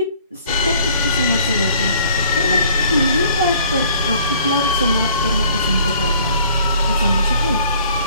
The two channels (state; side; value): inverted; both; correlation -0.57